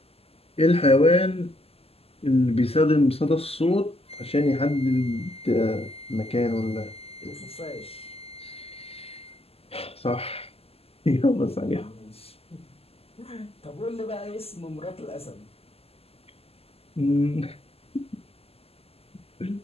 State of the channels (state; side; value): late; right; 0.29 ms